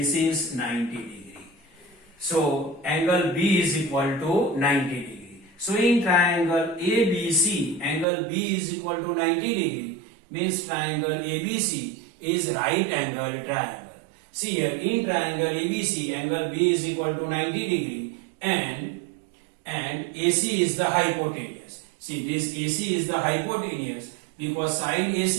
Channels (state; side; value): drops out; left; at 8.1 s